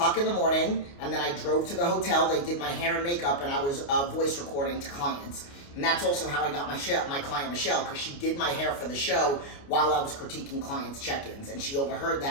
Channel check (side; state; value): right; late; 29 ms